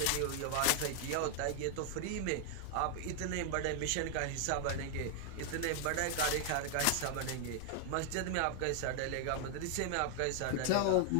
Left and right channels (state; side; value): different; both; correlation 0.00